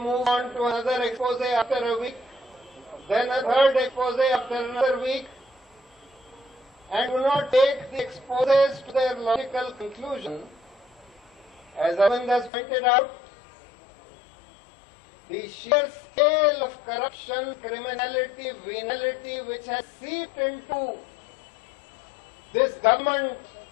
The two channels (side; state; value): right; drops out; at 12.5 s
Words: on to another expose after a week, then a third expose after another week, and do not take the exposes to their logical conclusion. As Arvind has pointed out, the sheer scale of corruption, criminality, venality which has seeped into this government,